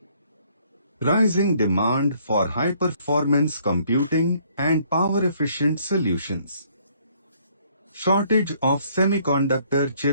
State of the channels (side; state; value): both; inverted; correlation -0.64